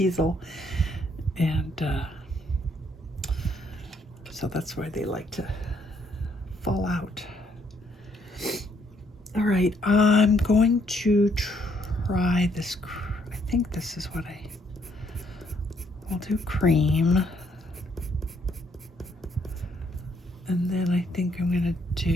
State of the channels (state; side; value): normal; both; correlation 0.70